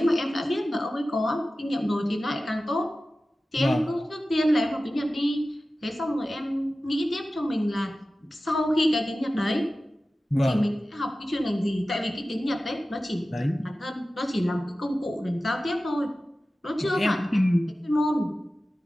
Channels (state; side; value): normal; both; correlation 0.95